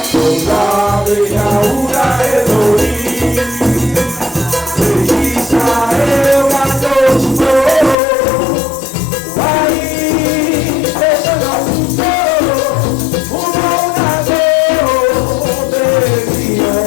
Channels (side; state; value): right; drops out; at 8.0 s